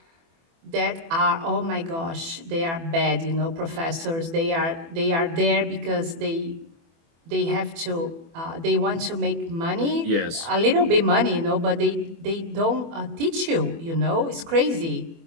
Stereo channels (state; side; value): late; left; 24 ms